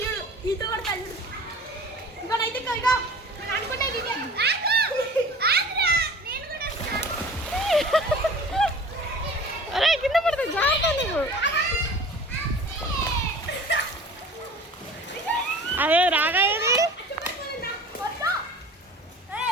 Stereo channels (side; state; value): both; normal; correlation 0.42